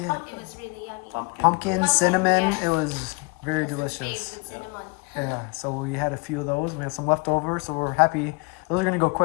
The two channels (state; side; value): quieter; right; 28.6 dB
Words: It was really yummy. Pumpkin, cinnamon. yes. It was very That's his delicious. favorite, cinnamon. Yeah. So we had a few of those. We had some left over, so we're happy. Those are gonna go